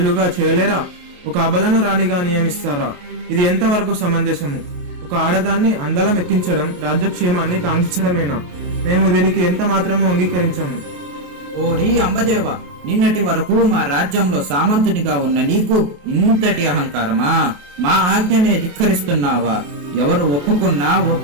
చేయలేరా? ఒక అబలను రాణిగా నియమిస్తారా? ఇది ఎంతవరకు సమంజసము? ఒక ఆడదాన్ని అందలం ఎక్కించడం రాజ్యక్షేమాన్ని కాంక్షించడమేనా? మేము దీనికి ఎంత మాత్రము అంగీకరించము. ఓరి అంబదేవ, నిన్నటి వరకు మా రాజ్యంలో సామంతునిగా ఉన్న నీకు ఇంతటి అహంకారమా? మా ఆజ్ఞనే ధిక్కరిస్తున్నావా? ఎవరు ఒప్పుకున్నా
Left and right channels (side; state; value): left; late; 28 ms